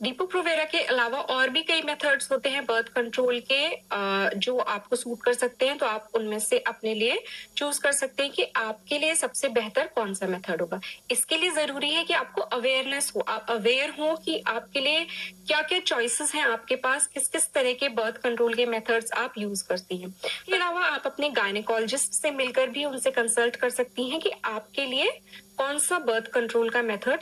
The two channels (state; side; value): identical; both; correlation 1.00